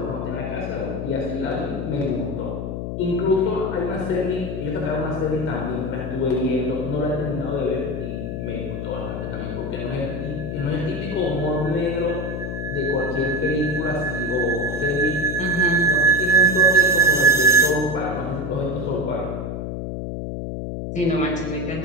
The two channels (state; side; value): noise; left; hum, 4 dB below the sound